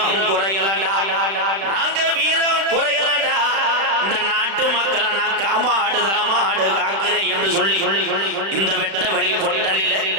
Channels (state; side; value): late; left; 36 ms